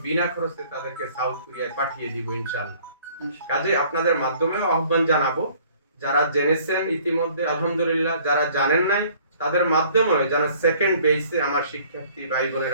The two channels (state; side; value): inverted; both; correlation -0.56